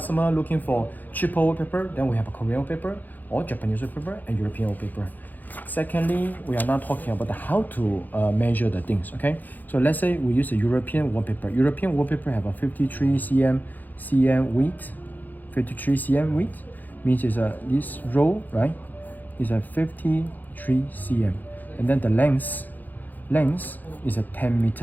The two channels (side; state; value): right; late; 0.085 ms